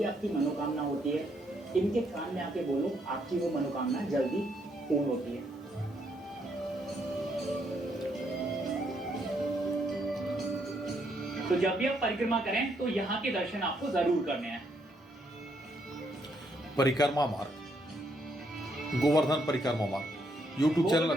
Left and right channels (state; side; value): normal; both; correlation 0.74